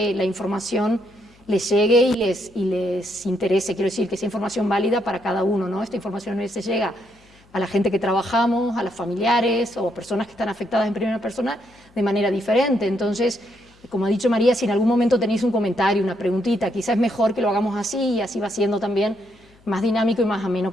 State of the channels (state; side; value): noise; left; hum, 30 dB below the sound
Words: la información les llegue y les interese. Quiero decir, que sea información válida para cada uno, ¿no? Esta información les llega a la gente que trabajamos, a los familiares o a personas que están afectadas en primera persona de manera diferente. Entonces, como ha dicho María, si en algún momento tenéis un comentario, una preguntita, quizás es mejor que lo hagamos así y así va siendo también más dinámico y más ameno